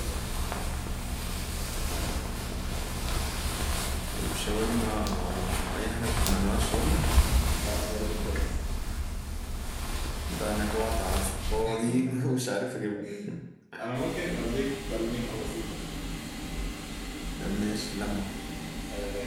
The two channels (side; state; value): both; identical; correlation 1.00